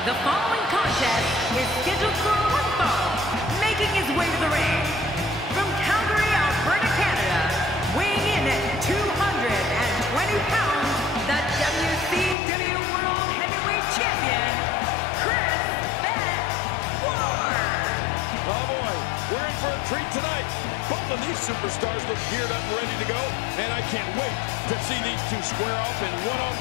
The following contest is scheduled for one fall, making his way to the ring. From Calgary, Alberta, Canada, weighing in at 220 pounds, the WCW World Heavyweight Champion, Chris Ward. Oh, boy. We're in for a treat tonight. Both of these superstars look geared up and ready to go, and I can't wait to see these two square off in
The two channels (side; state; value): right; drops out; at 12.4 s